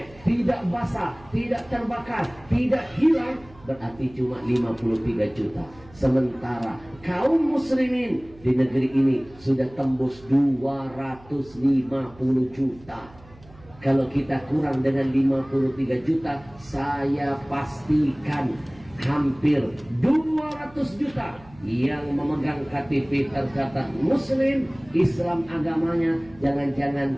tidak basah, tidak terbakar, tidak hilang, berarti cuma 53 juta. Sementara kaum muslimin di negeri ini sudah tembus 250 juta. Kalau kita kurang dengan 53 juta, saya pastikan hampir 200 juta yang memegang KTP tercatat muslim, Islam agamanya. Jangan-jangan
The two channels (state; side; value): noise; right; hum, 24 dB below the sound